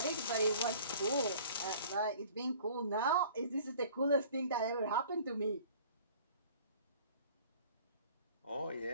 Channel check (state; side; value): inverted; both; correlation -0.49